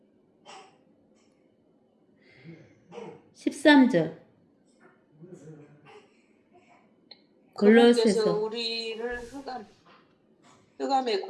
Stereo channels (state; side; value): identical; both; correlation 1.00